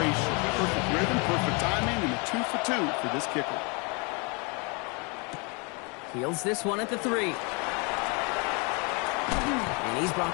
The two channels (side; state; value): right; quieter; 32.0 dB